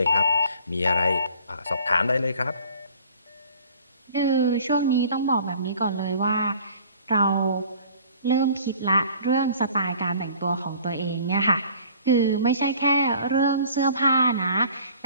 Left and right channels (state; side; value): inverted; both; correlation -0.51